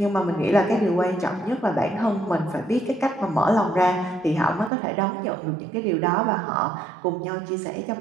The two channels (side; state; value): left; drops out; at 4.7 s